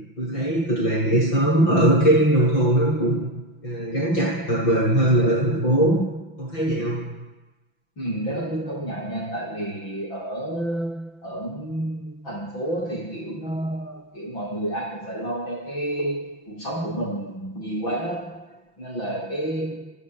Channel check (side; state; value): right; late; 6.0 ms